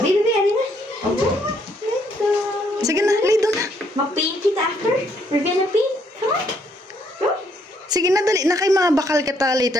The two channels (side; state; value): both; normal; correlation 0.70